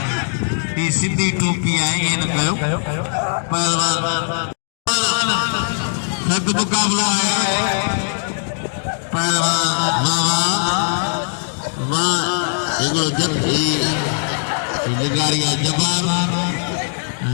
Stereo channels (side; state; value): right; silent; digital silence